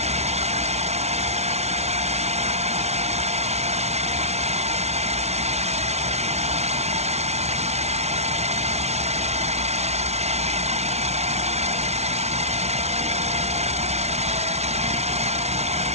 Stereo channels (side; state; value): left; late; 0.31 ms